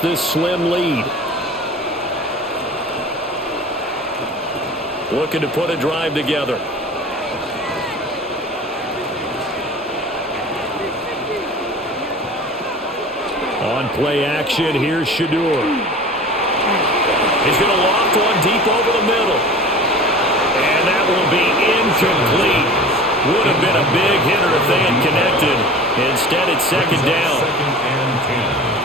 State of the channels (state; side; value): normal; both; correlation 0.39